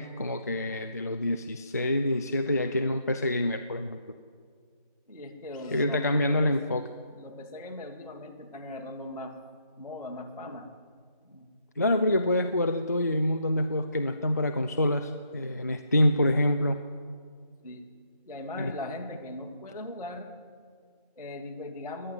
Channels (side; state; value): both; inverted; correlation -0.74